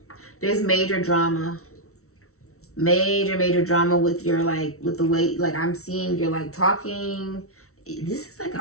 There's major drama. Major drama with your, like, with the way, like, I'm seeing you're, like, talking. This is like an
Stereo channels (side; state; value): right; late; 0.63 ms